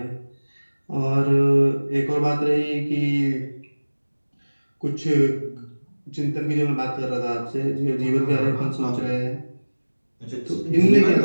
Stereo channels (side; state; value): both; inverted; correlation -1.00